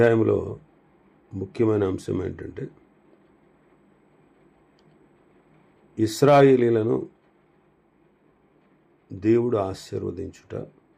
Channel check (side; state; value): both; identical; correlation 1.00